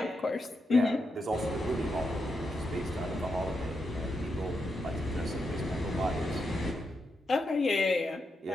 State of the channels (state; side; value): normal; both; correlation 0.84